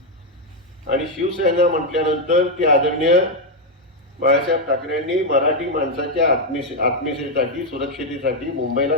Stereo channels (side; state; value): both; normal; correlation 0.02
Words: आणि शिवसेना म्हटल्यानंतर ती आदरणीय बाळासाहेब ठाकरेंनी मराठी माणसाच्या आत्मीयतेसाठी, सुरक्षितेसाठी मुंबईला